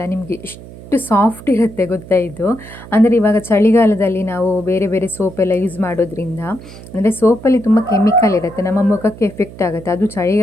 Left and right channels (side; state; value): right; noise; hum, 17 dB below the sound